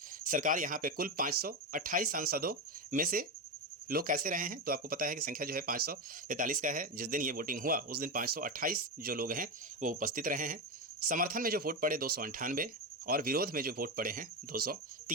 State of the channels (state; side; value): normal; both; correlation 0.13